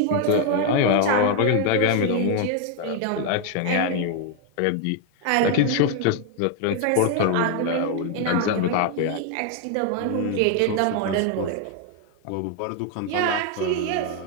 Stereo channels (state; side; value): different; both; correlation 0.00